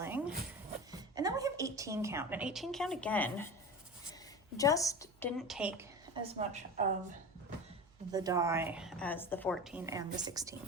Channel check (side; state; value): right; noise; hum, 28 dB below the sound